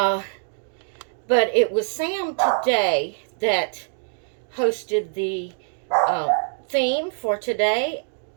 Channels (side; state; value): left; silent; digital silence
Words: it was Sam today that hosted the theme for today,